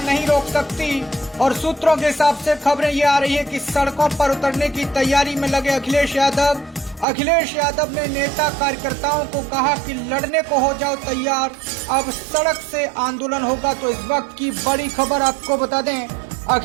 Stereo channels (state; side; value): drops out; left; at 7.1 s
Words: नहीं रोक सकती और सूत्रों के हिसाब से खबरें ये आ रही है कि सड़कों पर उतरने की तैयारी में लगे अखिलेश यादव। अखिलेश यादव ने नेता कार्यकर्ताओं को कहा कि लड़ने को हो जाओ तैयार, अब सड़क से आंदोलन होगा। तो इस वक्त की बड़ी खबर आपको बता दें,